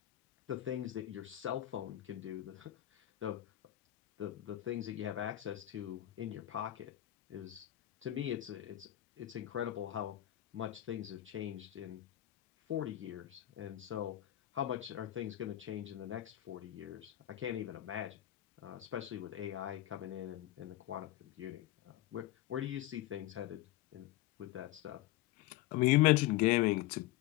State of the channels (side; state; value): right; quieter; 14.5 dB